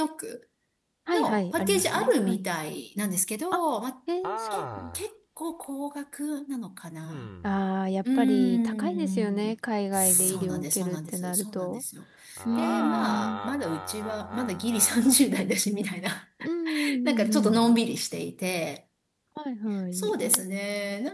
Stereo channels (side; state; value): both; identical; correlation 1.00